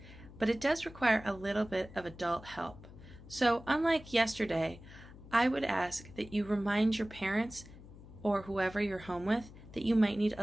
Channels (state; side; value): noise; left; hum, 18 dB below the sound